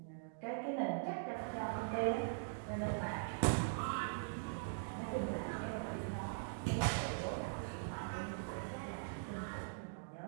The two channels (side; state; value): left; silent; digital silence